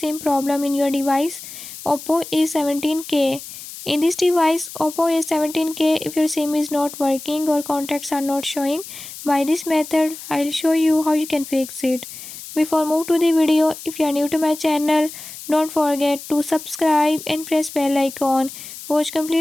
problem in your device Oppo A17k. In this device Oppo A17k, if your SIM is not working or contacts are not showing, by this method I'll show you how you can fix it. Before move to the video, if you are new to my channel, don't forget to subscribe and press bell icon. Watch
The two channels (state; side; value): noise; left; hiss, 13 dB below the sound